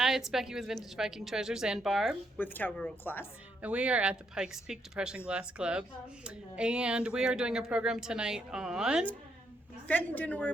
it's Becky with Vintage Viking Treasures and Barb with Cowgirl Class. And we are at the Pikes Peak Depression Glass Club. And we are doing a program tonight on Fenton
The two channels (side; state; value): both; normal; correlation 0.76